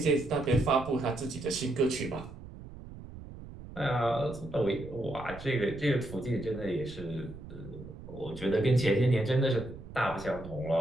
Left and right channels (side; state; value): right; noise; rumble, 14 dB below the sound